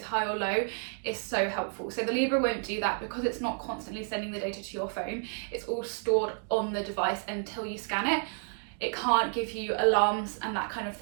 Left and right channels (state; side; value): silent; left; 57 dB below the other